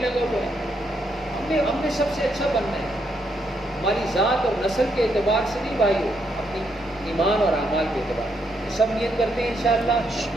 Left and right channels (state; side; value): normal; both; correlation 0.77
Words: ہوا ہے۔ ہم نے سب سے اچھا بننا ہے، ہماری ذات اور نسل کے اعتبار سے نہیں بھائیو، اپنی ایمان اور اعمال کے اعتبار سے۔ سب نیت کرتے ہیں انشاءاللہ۔